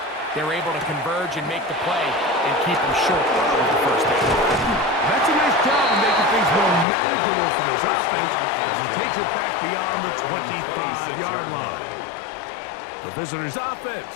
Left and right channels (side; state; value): right; drops out; at 6.9 s